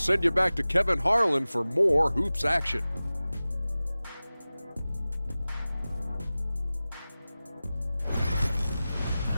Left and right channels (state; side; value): inverted; both; correlation -0.97